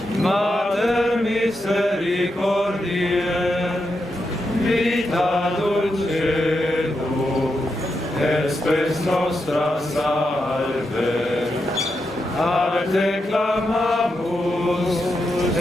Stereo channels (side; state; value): both; normal; correlation 0.85